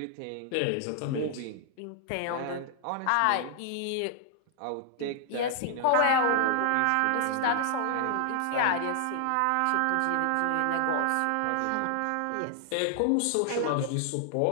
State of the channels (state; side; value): different; both; correlation 0.00